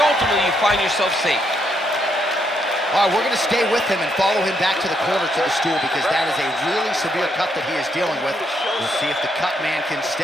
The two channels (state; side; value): normal; both; correlation 0.76